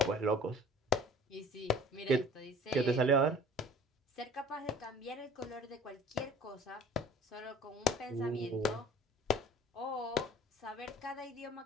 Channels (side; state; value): both; normal; correlation 0.47